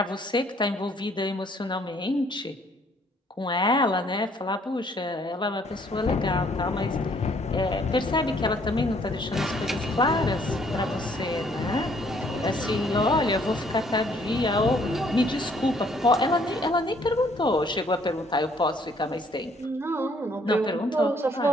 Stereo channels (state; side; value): normal; both; correlation 0.64